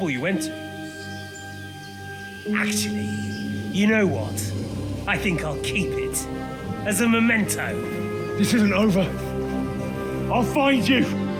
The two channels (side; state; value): both; identical; correlation 1.00